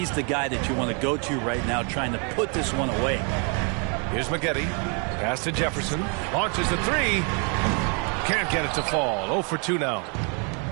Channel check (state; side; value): quieter; left; 36.6 dB